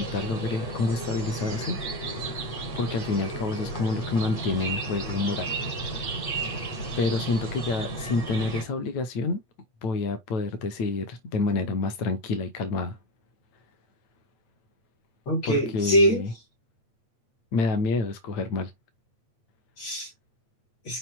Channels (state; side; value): late; right; 8.6 ms